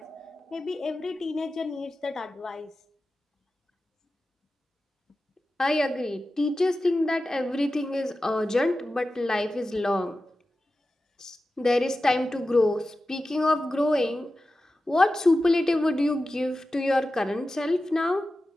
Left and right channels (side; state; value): both; normal; correlation 0.94